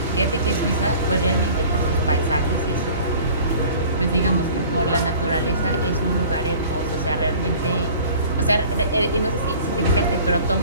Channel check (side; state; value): both; inverted; correlation -0.46